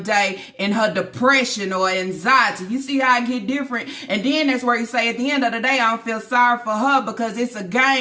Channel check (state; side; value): identical; both; correlation 1.00